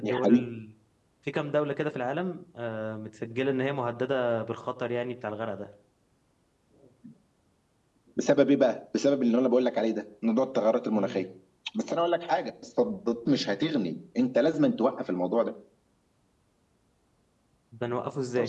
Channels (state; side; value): identical; both; correlation 1.00